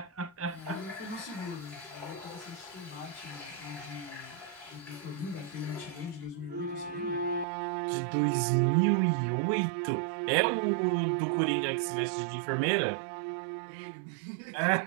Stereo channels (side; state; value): left; drops out; at 7.5 s